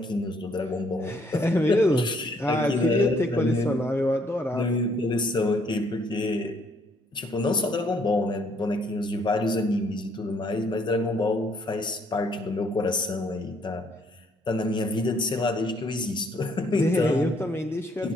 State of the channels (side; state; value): both; normal; correlation 0.67